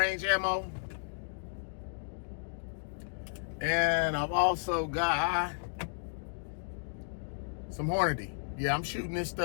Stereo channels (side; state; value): right; silent; digital silence